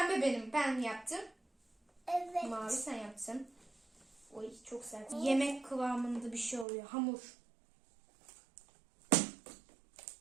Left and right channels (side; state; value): left; drops out; at 6.7 s